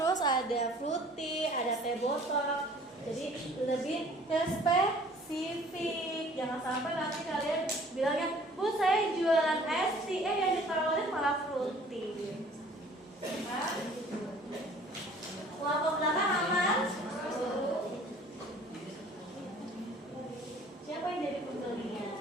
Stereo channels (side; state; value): both; normal; correlation 0.52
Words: ada fruity, ada teh botol. Jadi lebih spesifik, jangan sampai nanti kalian bilangnya, Bu saya jualan es tea, yang ditawarin malah fruity. Nah, kelompok belakang aman? Siapa yang jadi pembelinya?